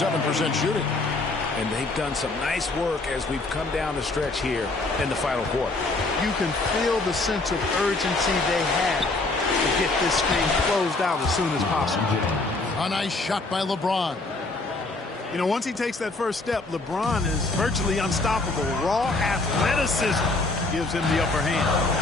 shooting. And they've done some nice work as we've come down the stretch here in the final quarter. You can feel the sense of urgency they have to get this thing closed out as soon as possible. A nice shot by LeBron. You know, once he takes that first step, LeBron is virtually unstoppable. Raw athleticism gives him the upper hand.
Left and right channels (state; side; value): quieter; right; 3.2 dB